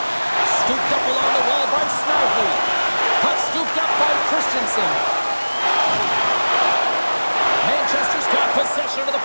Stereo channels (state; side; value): inverted; both; correlation -1.00